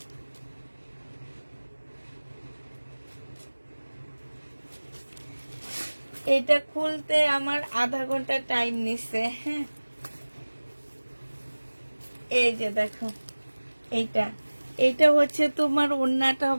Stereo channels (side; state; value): both; inverted; correlation -1.00